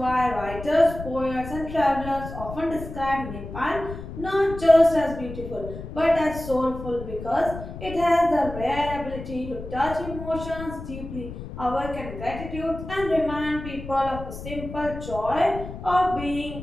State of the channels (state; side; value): noise; left; rumble, 10 dB below the sound